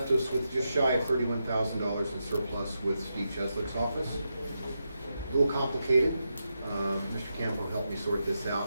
us with just shy of $31,000 in surplus with Steve Cheslick's office. A little complicated. Mr. Campo helped me sort this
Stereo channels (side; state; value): both; inverted; correlation -0.86